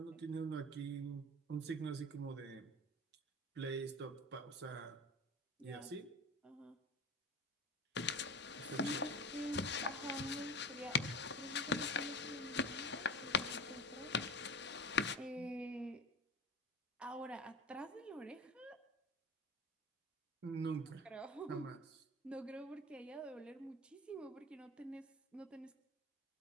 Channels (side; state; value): both; normal; correlation 0.31